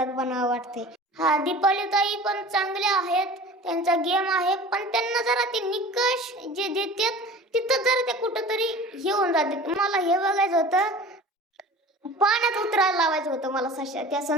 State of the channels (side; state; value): both; normal; correlation 0.40